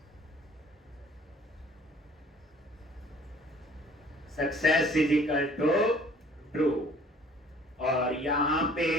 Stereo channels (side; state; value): both; normal; correlation 0.54